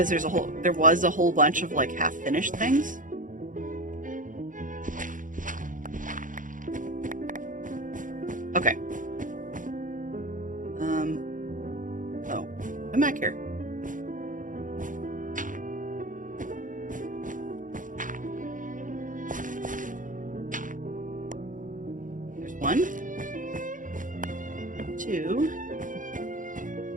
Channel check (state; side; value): late; left; 0.38 ms